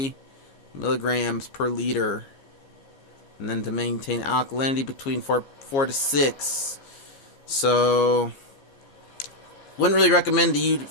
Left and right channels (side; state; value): right; late; 15 ms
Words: milligrams per liter. And then to maintain alkalinity between 4 to 6. So wouldn't really recommend